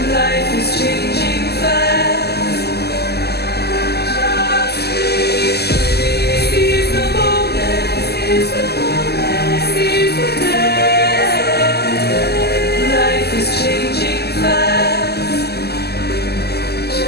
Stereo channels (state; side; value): late; right; 0.47 ms